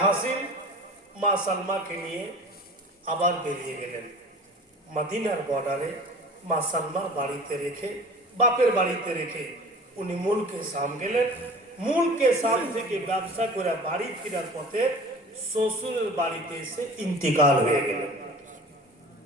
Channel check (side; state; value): both; normal; correlation 0.41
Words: হাসিম মা সালমাকে নিয়ে আবার বেরিয়ে গেলেন। মদিনার বর্ডারে মা সালমার বাড়িতে রেখে, বাপের বাড়িতে রেখে উনি মুলকে শাম গেলেন। মুলকে শাম থেকে ব্যবসা করে বাড়ি ফেরার পথে শ্বশুরের বাড়িতে এসে ইন্তিকাল হয়ে গেলেন।